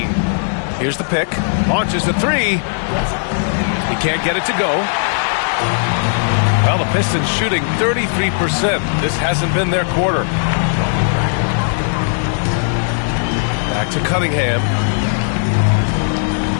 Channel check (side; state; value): right; silent; digital silence